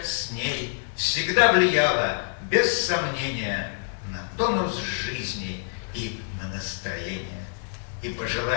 с ней всегда влияла, без сомнения, на тонус жизни и на настроение. И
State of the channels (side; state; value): right; silent; digital silence